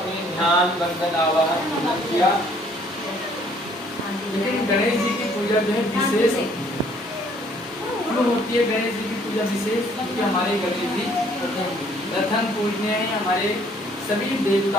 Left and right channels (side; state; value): both; normal; correlation 0.61